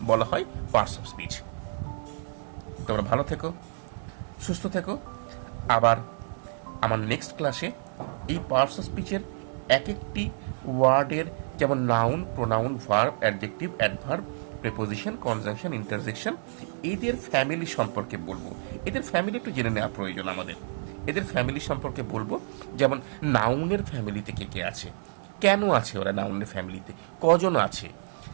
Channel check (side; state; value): left; silent; 59 dB below the other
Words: বলা হয় পার্টস অফ স্পিচ। তোমরা ভালো থেকো, সুস্থ থেকো। আবার আমার নেক্সট ক্লাসে এই পার্টস অফ স্পিচের এক একটি ওয়ার্ডের, যেমন noun, pronoun, verb, adjective, adverb, preposition, conjunction, interjection, এদের ফ্যামিলি সম্পর্কে বলবো। এদের ফ্যামিলি একটু জেনে নেওয়া প্রয়োজন আমাদের। এদের ফ্যামিলি সম্পর্কে বলবো, যেমন নাউনের ফ্যামিলিতে কে কে আছে, কেন আছে ওরা নাউনের ফ্যামিলিতে, কজন আছে।